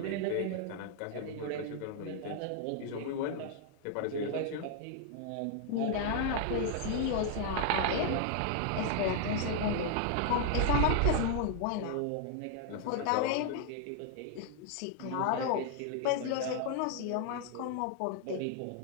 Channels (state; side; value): different; both; correlation 0.00